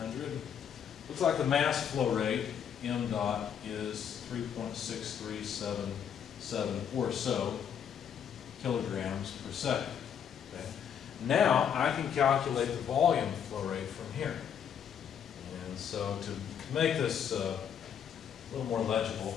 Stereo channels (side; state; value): right; quieter; 8.3 dB